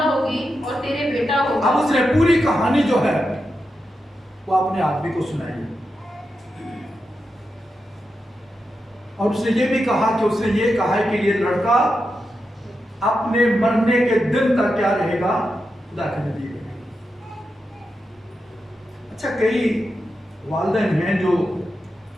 होगी और तेरे बेटा होगा। अब उसने पूरी कहानी जो है वो अपने आदमी को सुनाई और उसने ये भी कहा कि उसने ये कहा है कि ये लड़का अपने मरने के दिन तक क्या रहेगा, खुदा के नबी रहेगा। अच्छा, कई वालिदैन हैं जो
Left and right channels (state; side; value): normal; both; correlation 0.88